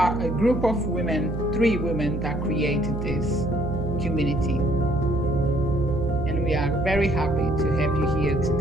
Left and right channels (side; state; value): right; noise; hum, 4 dB below the sound